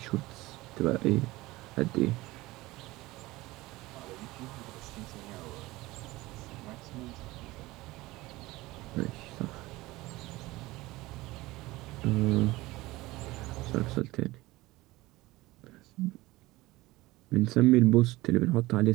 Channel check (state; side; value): quieter; left; 19.5 dB